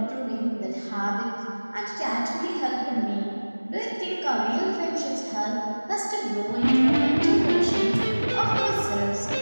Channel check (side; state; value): both; inverted; correlation -1.00